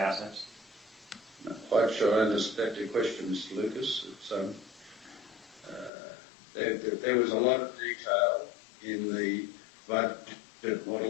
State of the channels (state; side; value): drops out; right; at 5.9 s